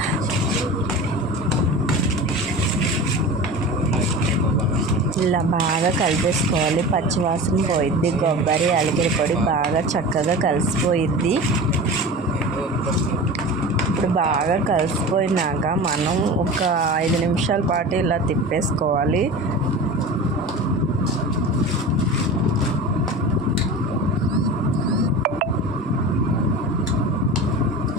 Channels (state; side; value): normal; both; correlation 0.32